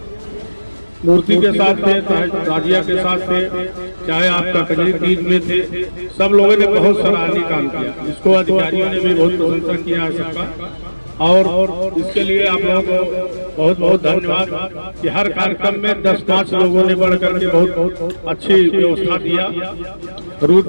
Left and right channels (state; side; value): inverted; both; correlation -1.00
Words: मूर्ति के साथ थे, ताजिया के साथ थे, चाहे आपका कजरी तीज में थे, सब लोगों ने बहुत सराहनीय काम किया। इसको अधिकारियों ने भी बहुत प्रशंसा किया है सबका, और इसके लिए आप लोगों को बहुत बहुत धन्यवाद कि हर कार्यक्रम में 10-5 लोगों ने बढ़ करके बहुत अच्छी व्यवस्था दिया। रूट